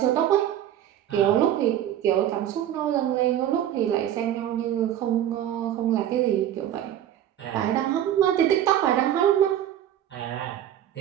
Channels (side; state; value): left; quieter; 11.1 dB